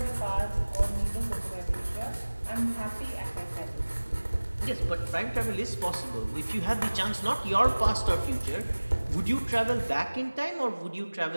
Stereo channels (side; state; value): both; inverted; correlation -1.00